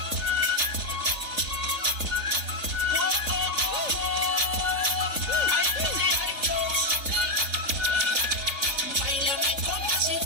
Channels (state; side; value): late; left; 3.3 ms